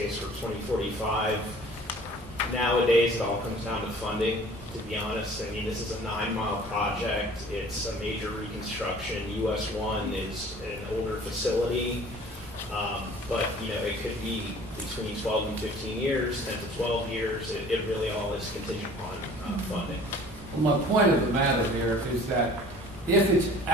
for 2045. Nowadays, it all comes down to funding, to be honest. I mean, this is a 9-mile project. It's a major reconstruction. US 1 is an older facility. But, you know, it could be between 12 and 15 years, 10 to 12 years. It really all is contingent upon funding. Well, my point of the matter here is that if it's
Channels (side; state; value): both; normal; correlation 0.48